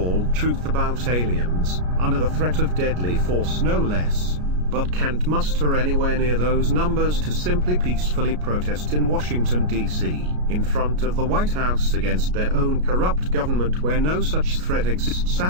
truth about aliens, under the threat of deadly force no less, but can't muster anywhere near those numbers to simply peacefully protest in Washington, D.C., in front of the White House against their own corrupt government where no such threat exists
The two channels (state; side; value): late; left; 33 ms